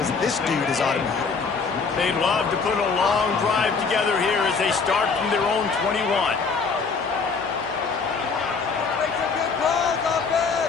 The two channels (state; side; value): quieter; right; 5.0 dB